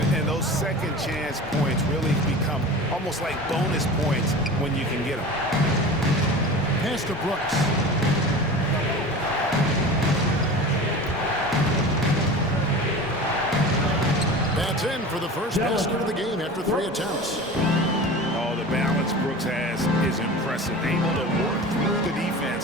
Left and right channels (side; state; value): both; normal; correlation 0.34